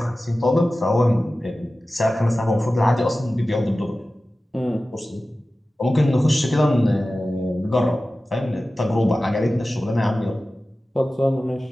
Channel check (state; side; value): normal; both; correlation 0.96